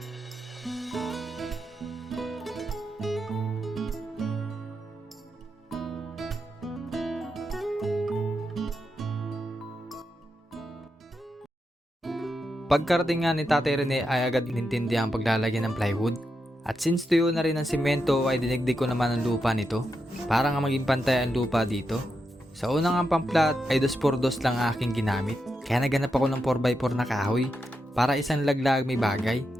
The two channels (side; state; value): both; normal; correlation 0.86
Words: Pagkarating nga ni Tatay Rene ay agad inintindi ang paglalagyan ng plywood. At since tuyo na rin ang simento ay dinigdig ko naman ang lupa nito para nga maging pantay ang lupa dito. Sa unang ang pamplat ay 2x2 lang aking ginamit. Kaya naganap ako ng 4x4 na kahoy para isang laglag may bagay.